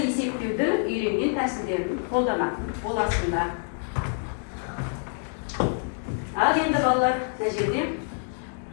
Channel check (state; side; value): silent; right; 60 dB below the other